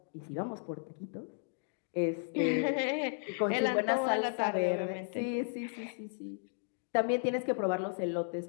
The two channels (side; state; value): right; silent; digital silence